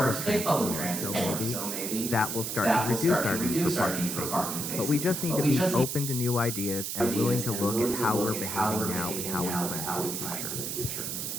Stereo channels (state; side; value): noise; right; hiss, 3 dB below the sound